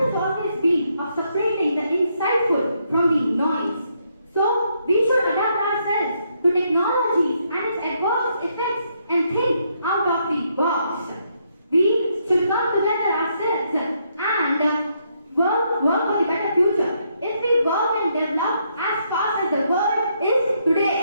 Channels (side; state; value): both; inverted; correlation -0.75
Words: has always been of separating the insightful from the noise. So, we should adapt ourselves to technology and its adverse effects and think out of the box. We should come together ourselves and work for the better future. If we work and develop as fast as the world is